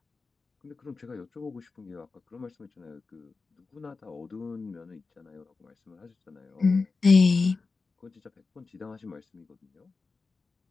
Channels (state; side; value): quieter; right; 4.2 dB